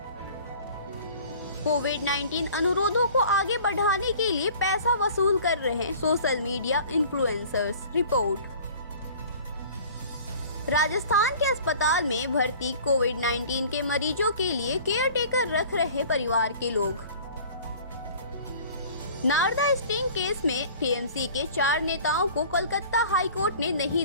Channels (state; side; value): inverted; both; correlation -0.46